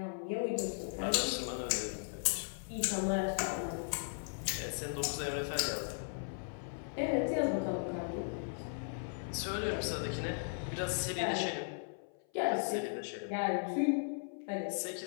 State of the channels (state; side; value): silent; right; 53 dB below the other